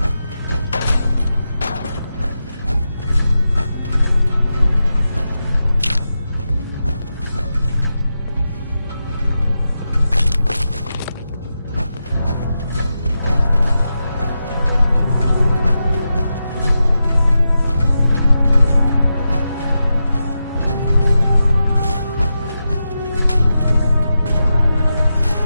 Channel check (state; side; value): inverted; both; correlation -0.89